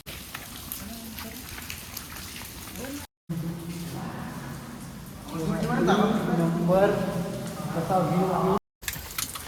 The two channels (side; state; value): both; identical; correlation 1.00